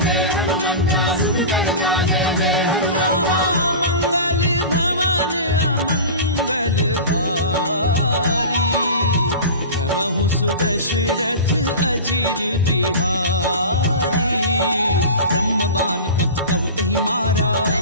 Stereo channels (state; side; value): inverted; both; correlation -0.31